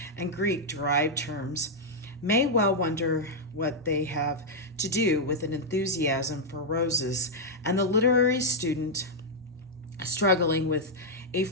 and Greek derived terms, may well wonder what they have to do with an enthusiasm for roses, and the literary student struggling with a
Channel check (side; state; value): both; normal; correlation -0.04